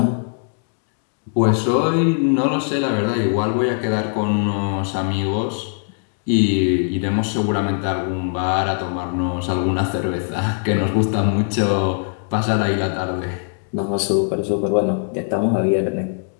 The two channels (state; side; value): silent; right; 65 dB below the other